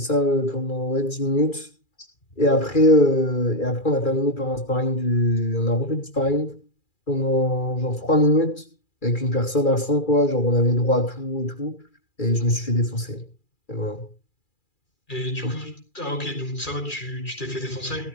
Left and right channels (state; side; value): late; right; 2.4 ms